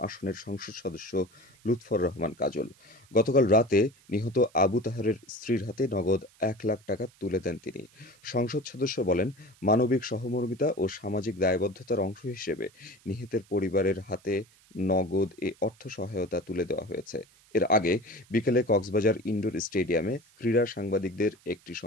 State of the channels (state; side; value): noise; right; hiss, 29 dB below the sound